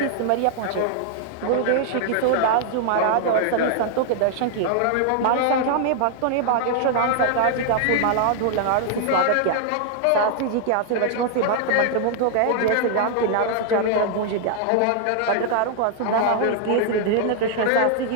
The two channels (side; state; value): both; different; correlation 0.00